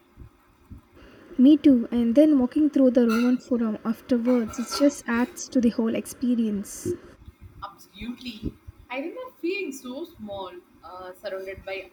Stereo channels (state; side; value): identical; both; correlation 1.00